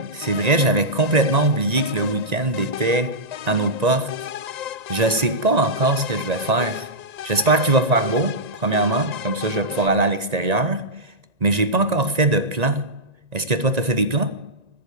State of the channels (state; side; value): late; left; 1.9 ms